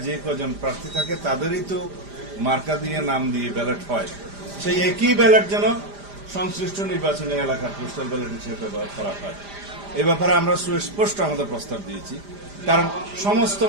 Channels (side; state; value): left; late; 5.0 ms